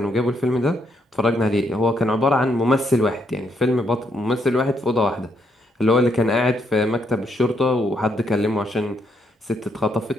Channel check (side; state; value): both; normal; correlation 0.75